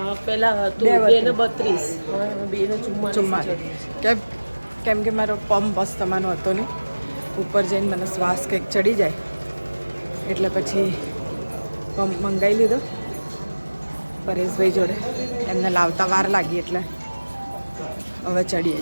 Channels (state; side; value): inverted; both; correlation -1.00